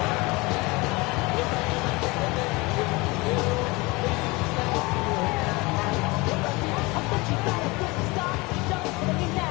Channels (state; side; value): quieter; right; 24.4 dB